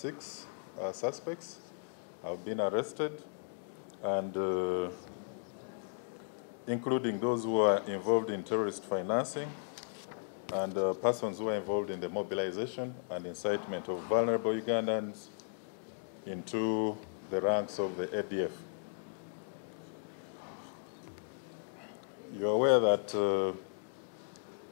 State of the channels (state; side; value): silent; right; digital silence